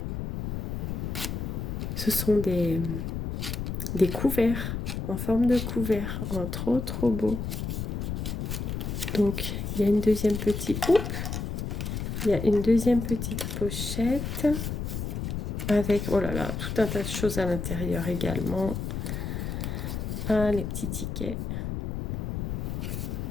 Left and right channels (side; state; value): left; noise; rumble, 3 dB below the sound